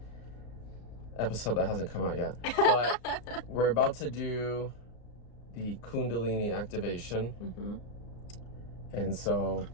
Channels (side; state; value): right; late; 34 ms